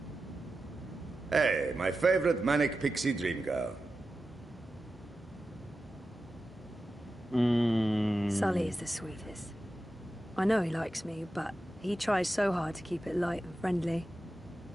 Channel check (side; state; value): both; normal; correlation 0.92